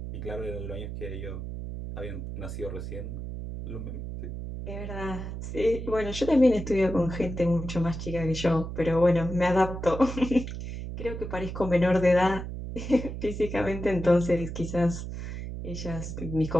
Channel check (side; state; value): right; noise; hum, 7 dB below the sound